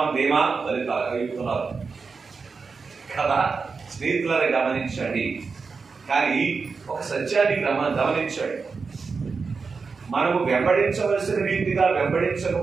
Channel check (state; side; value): quieter; left; 4.8 dB